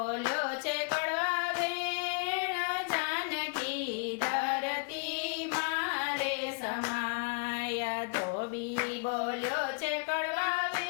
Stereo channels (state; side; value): quieter; right; 35.0 dB